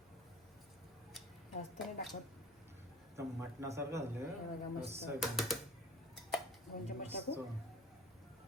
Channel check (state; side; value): noise; left; hum, 27 dB below the sound